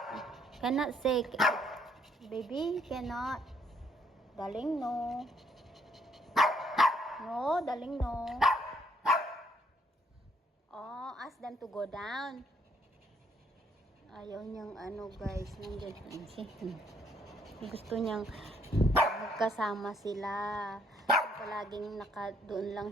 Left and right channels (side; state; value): both; normal; correlation 0.68